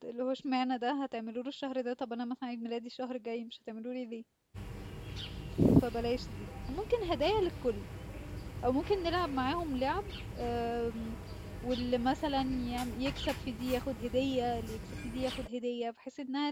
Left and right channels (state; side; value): identical; both; correlation 1.00